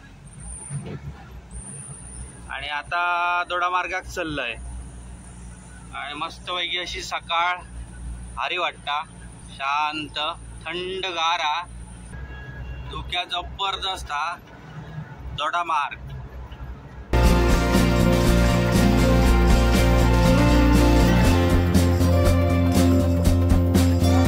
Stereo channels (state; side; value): identical; both; correlation 1.00